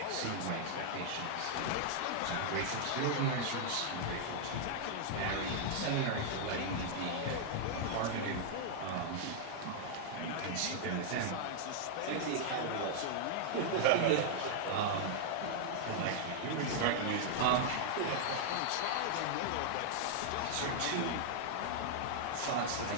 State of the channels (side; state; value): both; different; correlation -0.01